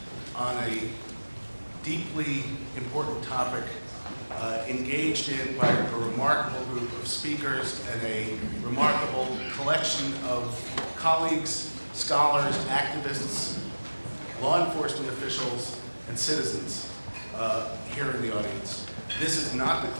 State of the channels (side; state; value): both; inverted; correlation -1.00